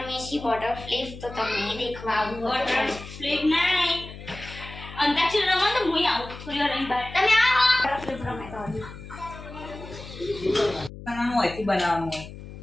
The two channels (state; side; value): noise; left; hum, 14 dB below the sound